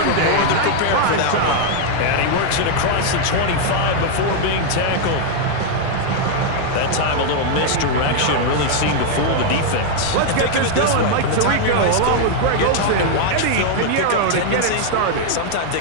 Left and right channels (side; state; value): both; different; correlation 0.00